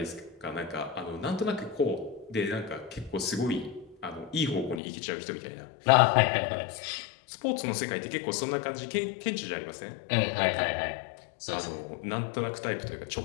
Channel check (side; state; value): right; drops out; at 4.8 s